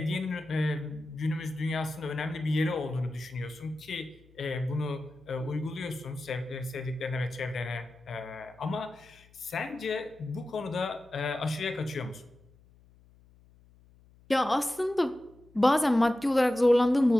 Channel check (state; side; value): noise; left; hum, 28 dB below the sound